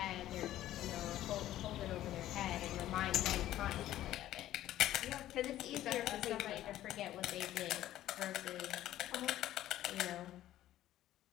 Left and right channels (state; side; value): quieter; right; 13.5 dB